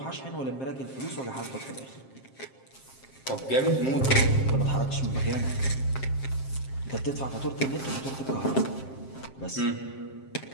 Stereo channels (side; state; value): right; late; 7.5 ms